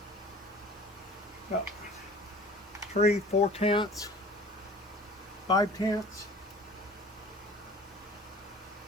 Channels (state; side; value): normal; both; correlation 0.45